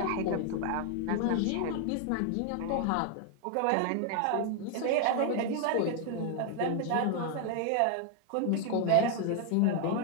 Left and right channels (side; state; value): both; different; correlation 0.00